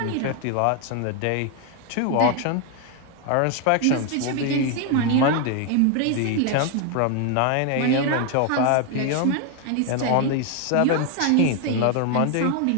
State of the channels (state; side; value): different; both; correlation 0.01